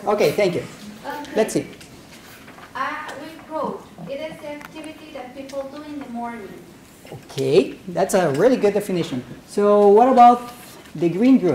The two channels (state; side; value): identical; both; correlation 1.00